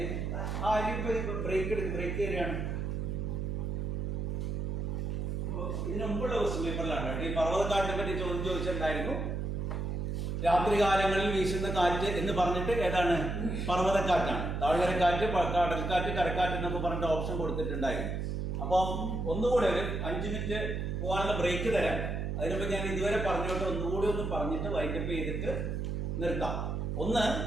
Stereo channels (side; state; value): right; noise; hum, 2 dB below the sound